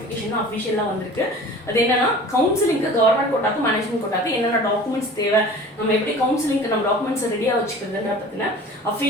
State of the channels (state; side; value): normal; both; correlation 0.42